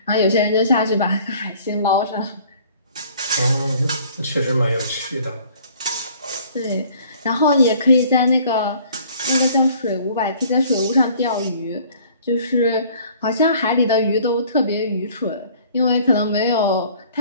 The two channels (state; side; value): inverted; both; correlation -0.54